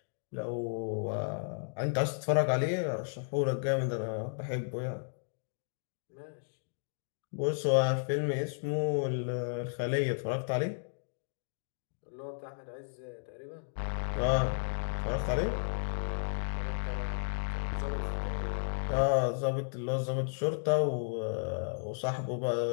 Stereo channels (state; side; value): silent; right; digital silence